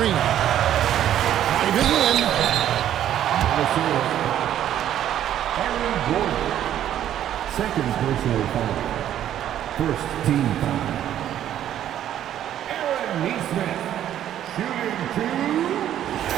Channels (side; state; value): left; quieter; 11.2 dB